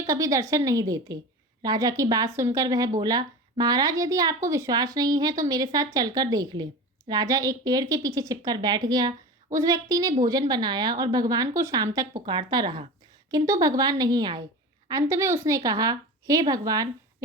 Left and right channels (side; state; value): both; normal; correlation 0.31